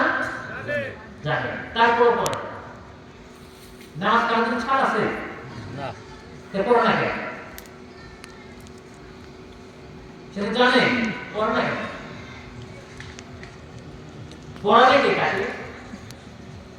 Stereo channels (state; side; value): identical; both; correlation 1.00